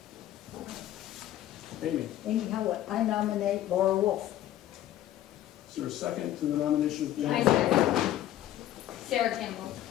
Amy, Amy Howlett, I nominate Laura Wolf. is there a second to the nomination of I Amy? second. Sarah Campbell.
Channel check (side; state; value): right; quieter; 12.9 dB